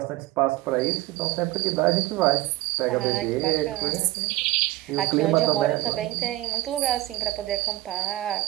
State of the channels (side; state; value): left; quieter; 17.4 dB